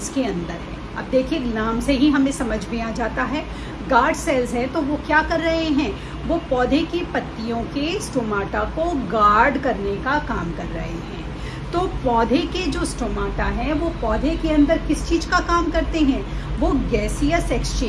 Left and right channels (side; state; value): both; identical; correlation 1.00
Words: के अंदर है। अब देखिए, नाम से ही हमें समझ में आ जाता है गार्ड सेल्स है, तो वो क्या कर रहे हैं, वो पौधे की पत्तियों के स्टोमाटा को गार्ड करने का काम कर रहे हैं। तो पौधे के जो स्टोमाटा है वो पौधे के अंदर किस चीज का काम करते हैं, वो गैसियस